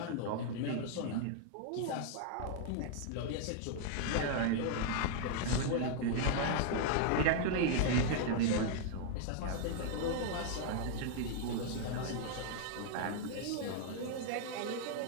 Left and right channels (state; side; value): different; both; correlation 0.00